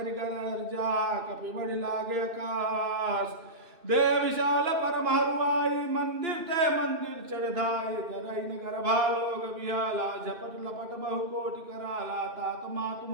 गर्जा कपि बढ़ लागे आकाश दे विशाल परम हरुआई मंदिर ते मंदिर चढ़ाई जरई नगर भालोग बिहाला झपट लपट बहु कोटि कराला तात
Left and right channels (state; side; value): late; left; 2.6 ms